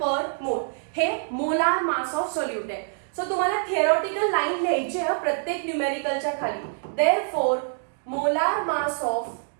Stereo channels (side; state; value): left; silent; digital silence